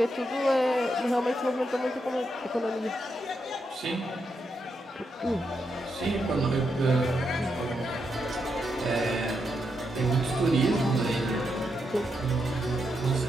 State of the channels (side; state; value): both; normal; correlation 0.82